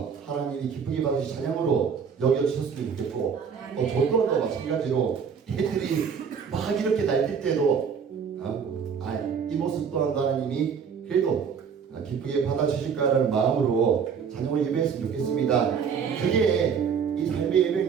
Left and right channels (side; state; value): left; quieter; 6.7 dB